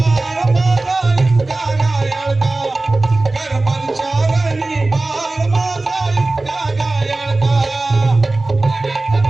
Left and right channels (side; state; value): left; quieter; 3.1 dB